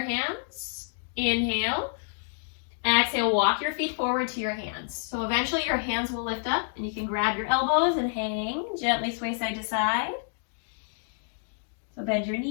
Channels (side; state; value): right; silent; digital silence